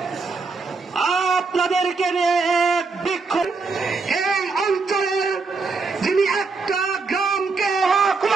আপনাদেরকে নিয়ে এক বিক্ষোভ এই অঞ্চলের যিনি একটা গ্রামকে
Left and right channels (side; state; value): left; quieter; 4.3 dB